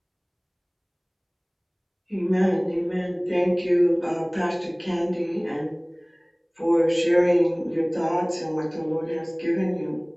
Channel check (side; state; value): both; identical; correlation 1.00